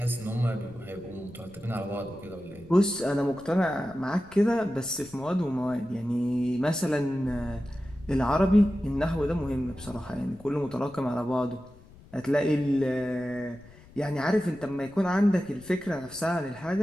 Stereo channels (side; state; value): left; noise; rumble, 22 dB below the sound